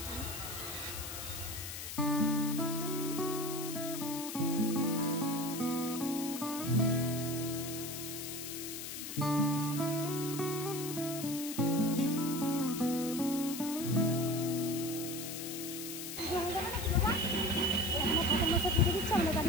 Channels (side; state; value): left; noise; hiss, 7 dB below the sound